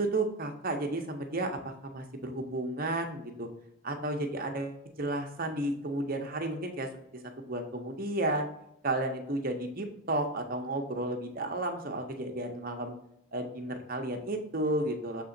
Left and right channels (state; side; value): normal; both; correlation 0.15